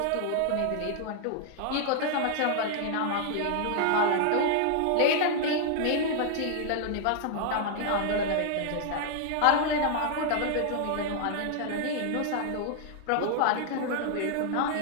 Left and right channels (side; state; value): both; different; correlation 0.00